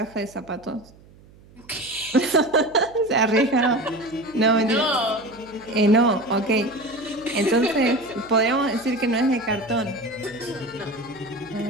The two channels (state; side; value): noise; right; hum, 25 dB below the sound